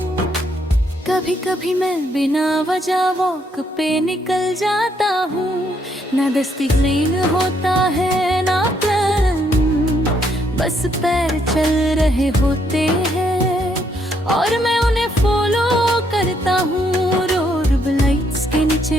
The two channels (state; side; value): normal; both; correlation 0.73